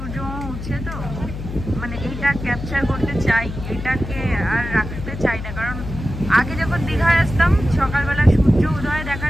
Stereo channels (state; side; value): noise; left; hum, 8 dB below the sound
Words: উঠছে তো, মানে এইটা ক্যাপচার করতে চাই, এটাকে আর রাখতে চাই না। কারণ আগে যখন দীঘায় আসতাম সকালবেলা সূর্য উদয়